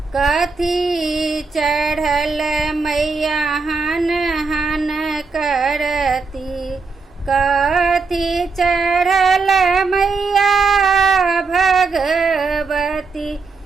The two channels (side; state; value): left; quieter; 4.5 dB